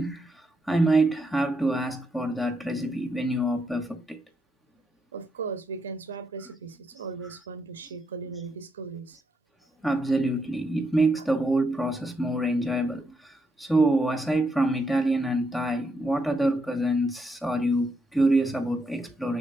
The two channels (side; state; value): both; normal; correlation 0.80